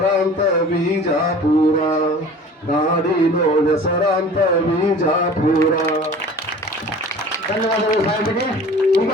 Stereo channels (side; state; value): both; normal; correlation 0.43